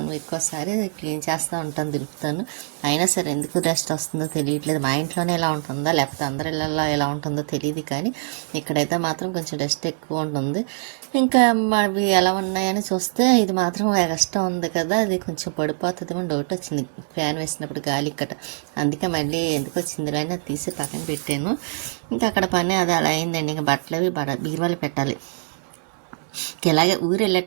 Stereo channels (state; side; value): silent; left; 63 dB below the other